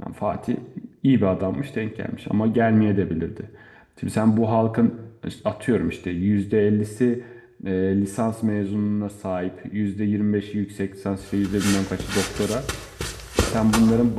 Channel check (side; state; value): both; identical; correlation 1.00